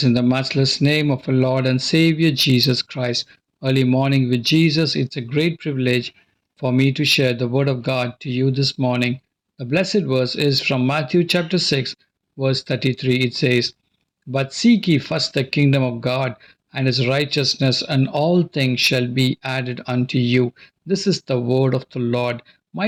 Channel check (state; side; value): identical; both; correlation 1.00